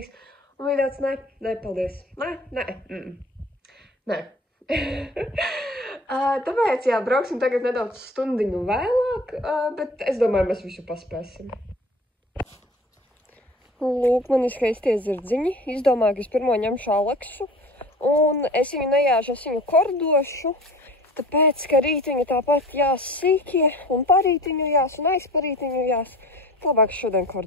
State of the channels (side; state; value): both; normal; correlation 0.43